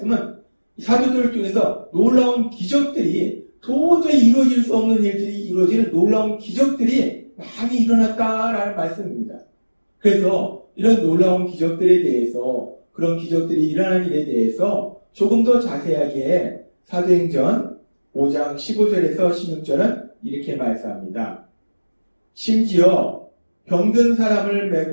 사도들을 통해서 놀라운 기적들이 도저히 이루어질 수 없는 일들이 이루어지는 놀라운 기적들이 많이 일어났다라는 말씀입니다. 그래서 이런 놀라운 기적들에 대해서, 그런 기적들이 일어난 일에 대해서 조금 더 자세하게 사도행전 5장 15절에서 16절은 이렇게 말씀합니다. 심지어 병든 사람을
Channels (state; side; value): inverted; both; correlation -1.00